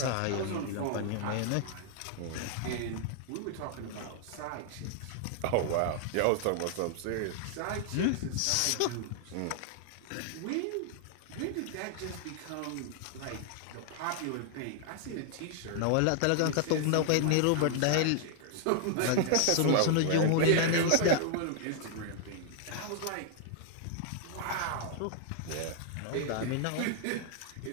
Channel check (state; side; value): different; both; correlation 0.00